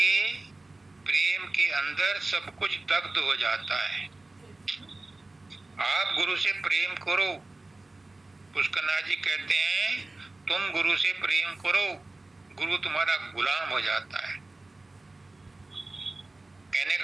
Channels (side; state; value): left; quieter; 3.0 dB